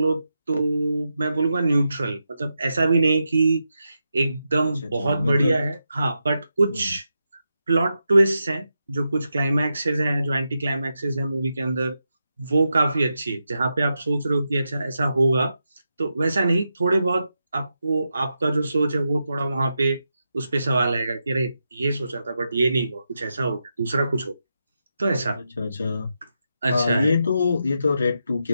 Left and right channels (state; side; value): inverted; both; correlation -0.86